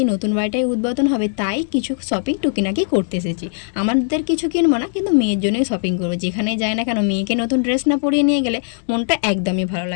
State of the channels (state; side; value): silent; right; digital silence